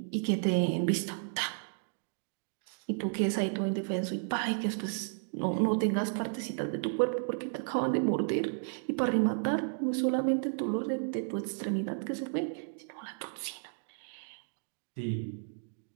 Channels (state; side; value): silent; left; digital silence